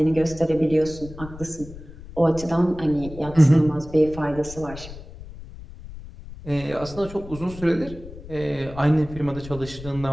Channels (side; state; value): left; noise; rumble, 15 dB below the sound